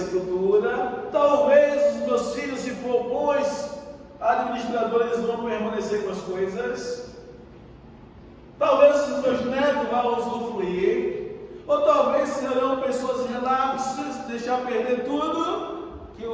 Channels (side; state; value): both; identical; correlation 1.00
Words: Talvez os meus filhos, se for bons administradores, vão permanecer com as coisas. Talvez os meus netos vão usufruir. Ou talvez serão pessoas relapsas, deixar perder tudo que